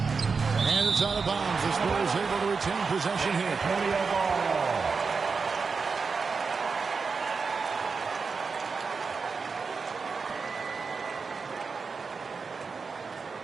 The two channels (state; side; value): quieter; left; 4.9 dB